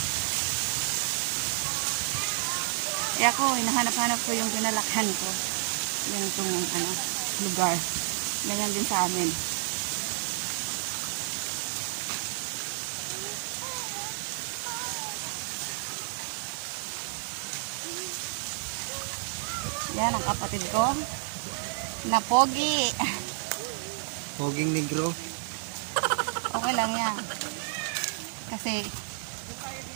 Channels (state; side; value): silent; left; 58 dB below the other